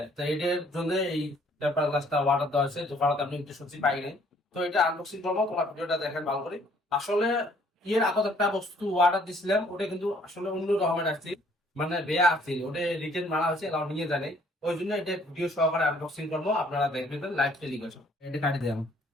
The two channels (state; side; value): normal; both; correlation 0.61